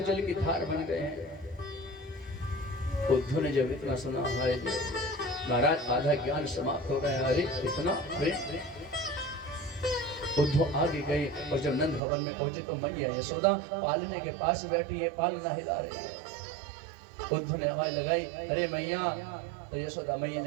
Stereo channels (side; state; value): left; drops out; at 12.0 s